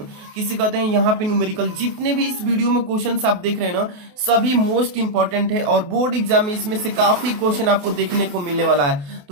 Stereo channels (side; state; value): left; late; 28 ms